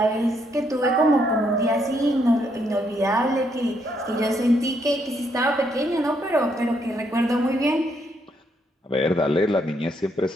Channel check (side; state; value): both; normal; correlation 0.74